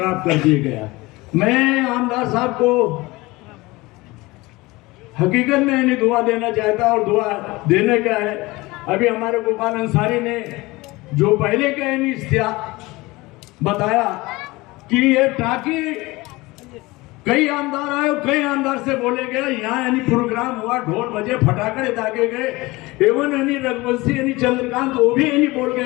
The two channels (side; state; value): right; quieter; 21.6 dB